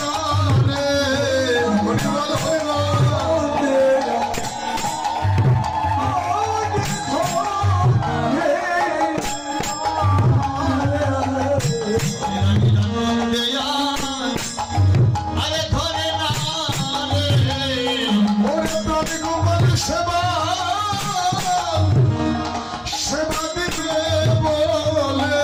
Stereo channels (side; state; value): both; identical; correlation 1.00